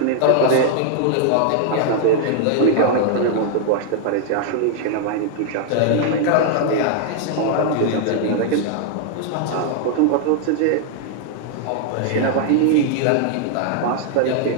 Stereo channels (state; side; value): different; both; correlation 0.00